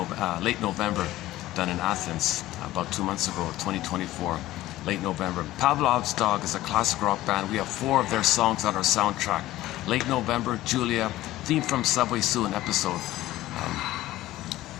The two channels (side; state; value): right; quieter; 15.9 dB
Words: November. done in Athens about 2 months ago, 2024, late November. Pavlov's Dog is a classic rock band. We have 4 of their songs on our soundtrack. Late November, Julia, Theme from Subway Sue episode.